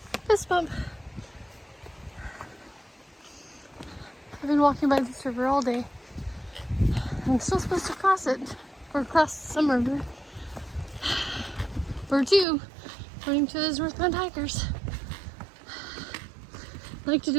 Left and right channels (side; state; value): left; drops out; at 12.5 s